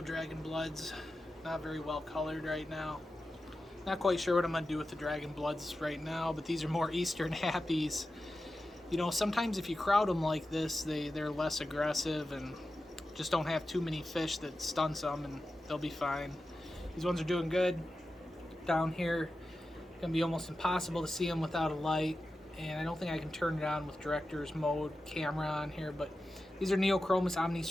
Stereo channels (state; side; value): normal; both; correlation 0.92